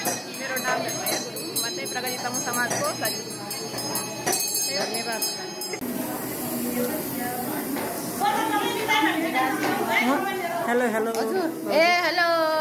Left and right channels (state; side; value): identical; both; correlation 1.00